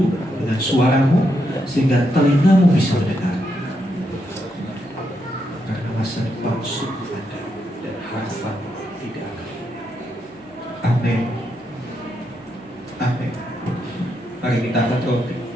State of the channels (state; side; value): normal; both; correlation 0.81